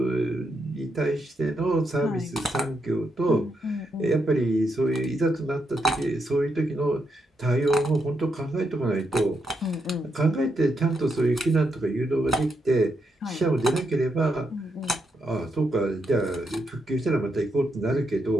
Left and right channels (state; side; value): normal; both; correlation 0.81